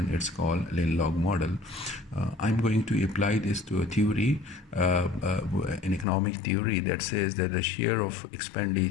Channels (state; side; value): drops out; right; at 6.1 s